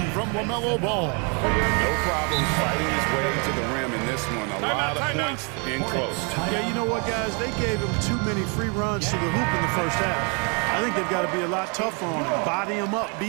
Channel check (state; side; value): quieter; left; 35.2 dB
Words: from LaMelo Ball. No problem fighting his way to the rim in this one. A lot of points in close. Yeah, you know what, guys? They gave him too many free runs to the hoop in the first half. I think they've got to be a lot tougher on him. Body him up.